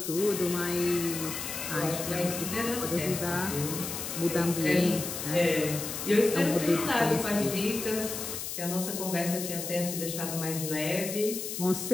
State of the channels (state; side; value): noise; left; hiss, 6 dB below the sound